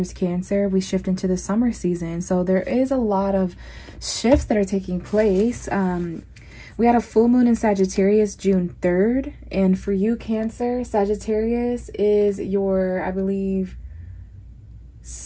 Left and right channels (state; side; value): identical; both; correlation 1.00